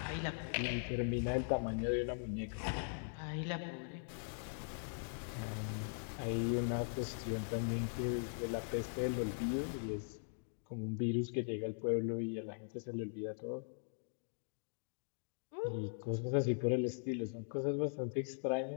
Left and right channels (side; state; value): right; silent; digital silence